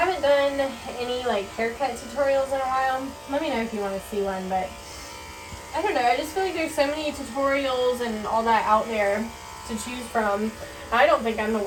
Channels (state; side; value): identical; both; correlation 1.00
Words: done any, like, haircut tutorials in a while. Let me know if you want to see one, but I don't know, I just feel like there's so many tutorials and all that out there to choose from. I don't think I'm the